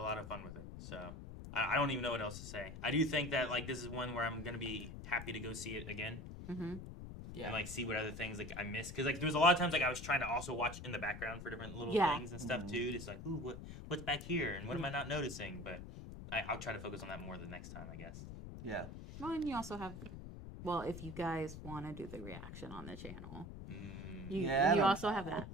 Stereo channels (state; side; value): noise; left; rumble, 10 dB below the sound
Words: of fun with it. So I don't even know what else to say. I do think that like this is one where I'm gonna be happy to go see it again Mm-hmm. Yeah. and like see what other things like I missed because like there was a lot of times like I was trying to also watch in the background for different little Yeah. things and stuff too. Just like ooh, what's back here and what am I not noticing? But I'll try to focus on that more the next time, I guess. Yeah. Well, and you also have, well, if you guys want to do the reaction on the channel, you Yeah, also have that.